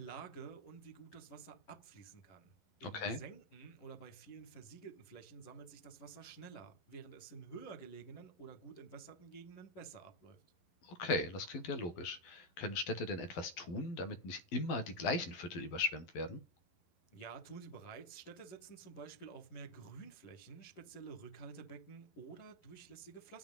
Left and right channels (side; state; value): right; late; 12 ms